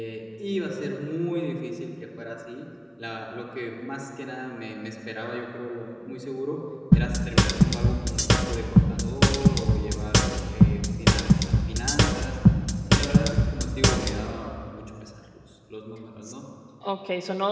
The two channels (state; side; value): identical; both; correlation 1.00